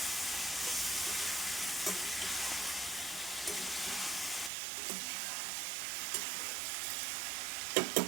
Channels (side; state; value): left; drops out; at 4.5 s